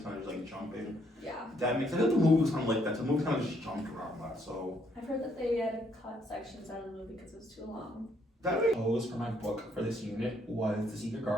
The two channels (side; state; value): both; normal; correlation 0.70